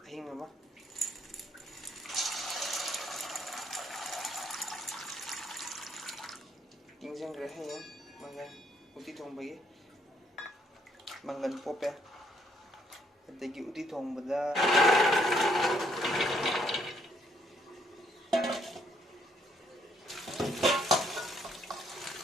hingama. Tingjangre hayeng mangan uti thongbagi. Mangan pope. Adigi uti thongbada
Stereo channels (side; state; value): both; normal; correlation 0.70